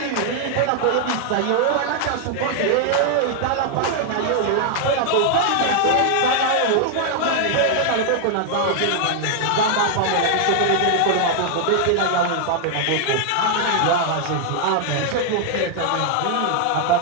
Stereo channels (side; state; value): both; different; correlation 0.00